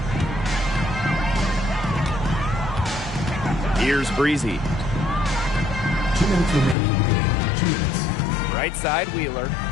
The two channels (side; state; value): right; drops out; at 6.8 s